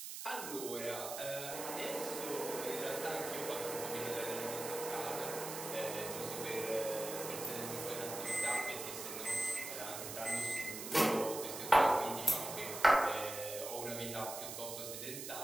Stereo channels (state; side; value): noise; right; hiss, 7 dB below the sound